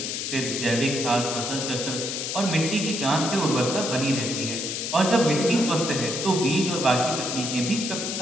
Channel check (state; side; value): noise; left; hiss, 3 dB below the sound